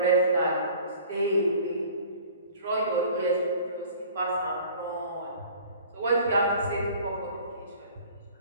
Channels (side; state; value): both; inverted; correlation -0.48